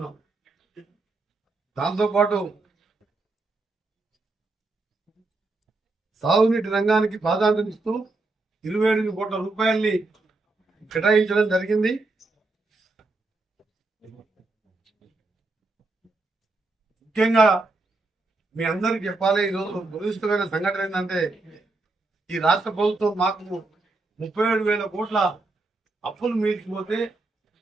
దాంతోపాటు సాగునీటి రంగానికి ప్రాధాన్యత ఇస్తూ 27 కోట్ల రూపాయల్ని కేటాయించడం జరిగింది. ముఖ్యంగా మీ అందరికి చెప్పాలి, ఈరోజు దురదృష్టమైన సంఘటన ఏంటంటే ఈ రాష్ట్ర ప్రభుత్వం మాకు 37,000 కోట్ల అప్పులు మీల్చిపోతే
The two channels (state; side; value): quieter; left; 3.3 dB